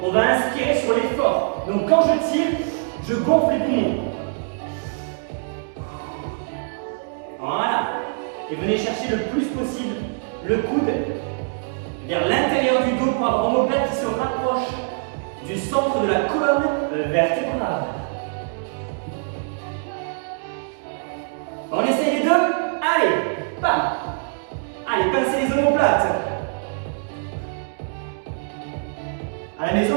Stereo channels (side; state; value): left; silent; digital silence